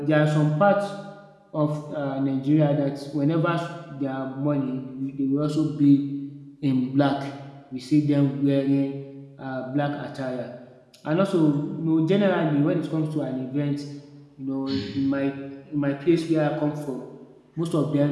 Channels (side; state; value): both; identical; correlation 1.00